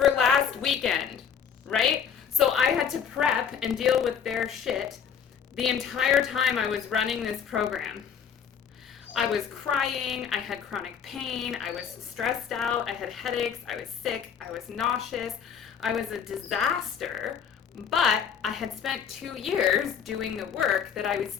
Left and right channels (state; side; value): quieter; right; 7.7 dB